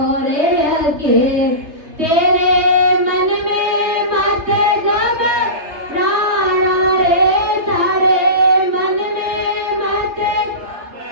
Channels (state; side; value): late; left; 3.3 ms